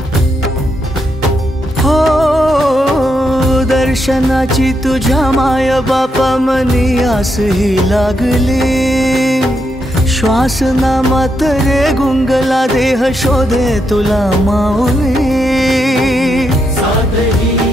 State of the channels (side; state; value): both; normal; correlation 0.81